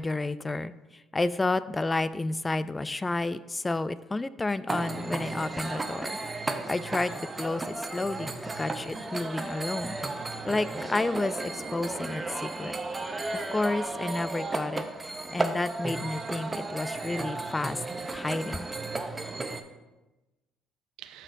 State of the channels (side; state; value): both; normal; correlation 0.93